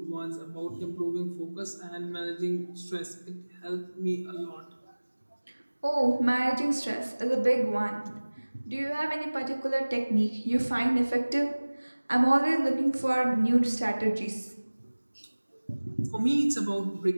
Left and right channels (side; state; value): both; inverted; correlation -1.00